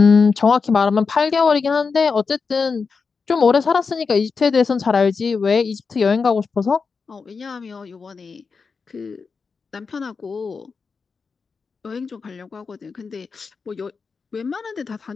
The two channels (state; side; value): quieter; right; 5.0 dB